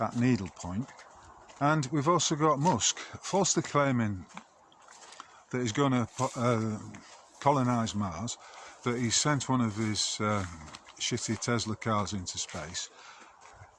at needle point, and we've also got Musk falsely claiming that he's going to colonise Mars, that he sent one of his shitty Tesla cars into space,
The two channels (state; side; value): identical; both; correlation 1.00